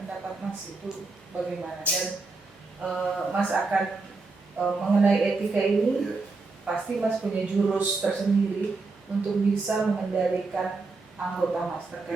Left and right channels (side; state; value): left; quieter; 3.8 dB